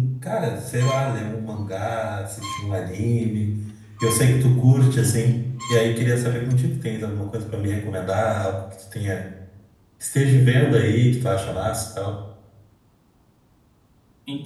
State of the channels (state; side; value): identical; both; correlation 1.00